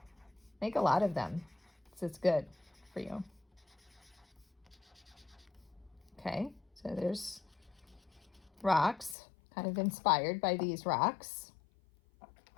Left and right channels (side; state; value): right; drops out; at 9.2 s